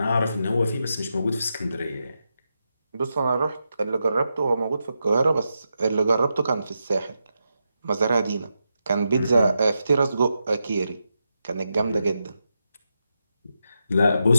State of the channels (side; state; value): both; inverted; correlation -0.86